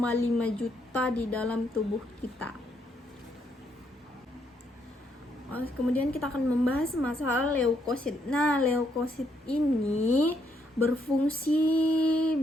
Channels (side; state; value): both; normal; correlation 0.74